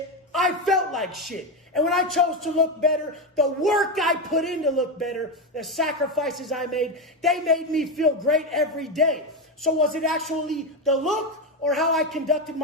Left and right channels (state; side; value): normal; both; correlation 0.12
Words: I felt like shit. And when I chose to look better, the work I put in to look better, the sacrifices I made, they made me feel great every day. So was it actually the look or how I conducted